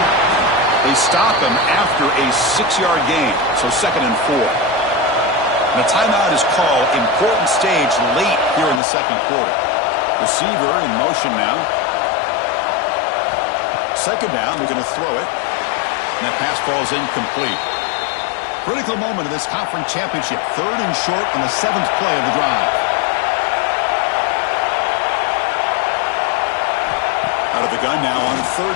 They stop him after a 6-yard gain. So 2nd and 4. And a timeout is called. Important stage late here in the second quarter. Receiver in motion now. Second down. We're going to throw it. And that pass ball is incomplete. Critical moment of this conference championship. 3rd and short on the 7th play of the drive. Out of the gun now on 3rd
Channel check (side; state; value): right; drops out; at 8.8 s